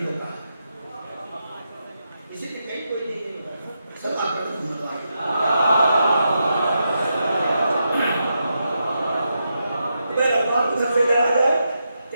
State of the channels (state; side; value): inverted; both; correlation -0.85